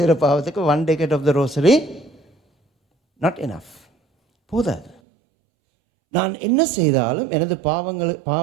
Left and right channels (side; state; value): left; drops out; at 5.0 s